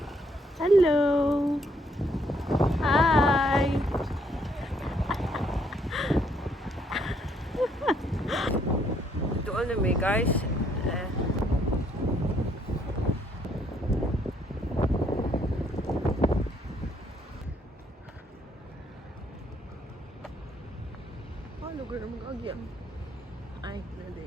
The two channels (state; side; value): normal; both; correlation 0.69